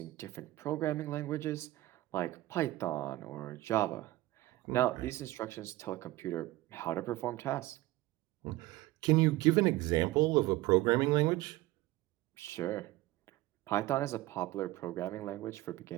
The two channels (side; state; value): left; quieter; 17.6 dB